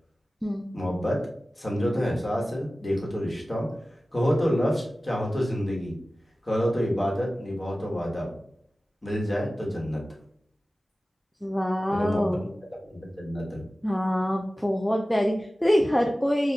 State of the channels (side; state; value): both; normal; correlation 0.96